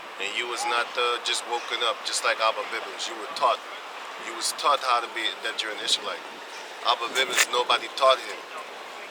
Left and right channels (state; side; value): identical; both; correlation 1.00